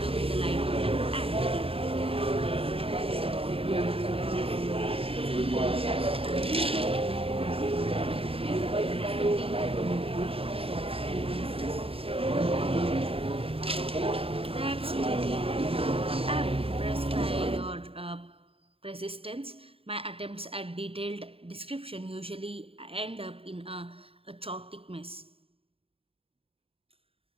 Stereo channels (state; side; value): late; left; 0.27 ms